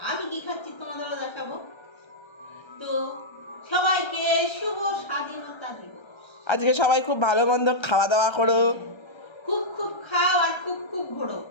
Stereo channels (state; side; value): late; right; 1.3 ms